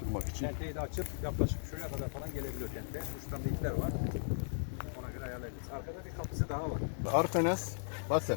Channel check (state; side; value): silent; right; 53 dB below the other